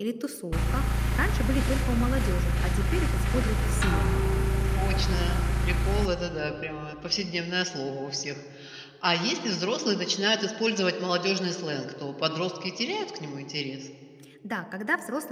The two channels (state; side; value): identical; both; correlation 1.00